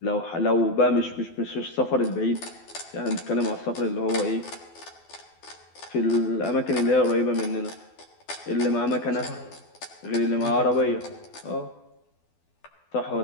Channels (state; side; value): late; right; 12 ms